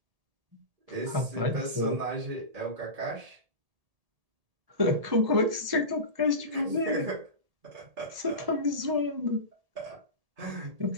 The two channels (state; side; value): late; left; 1.8 ms